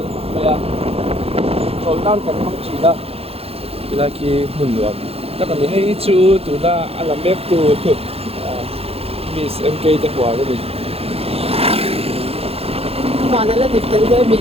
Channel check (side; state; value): left; late; 0.29 ms